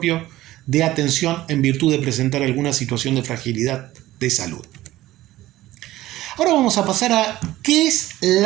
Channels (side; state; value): left; quieter; 15.9 dB